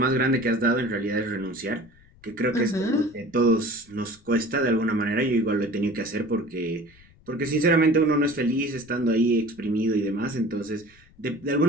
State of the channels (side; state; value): left; noise; rumble, 28 dB below the sound